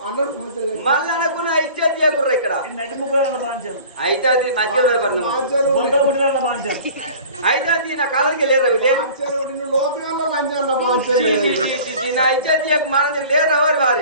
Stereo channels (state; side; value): inverted; both; correlation -0.44